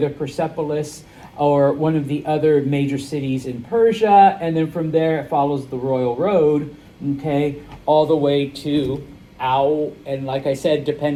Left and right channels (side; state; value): both; identical; correlation 1.00